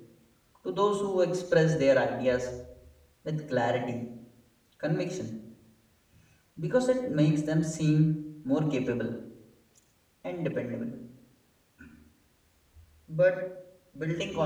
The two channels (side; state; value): both; identical; correlation 1.00